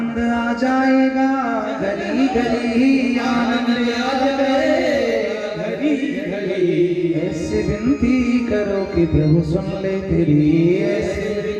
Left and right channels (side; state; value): both; identical; correlation 1.00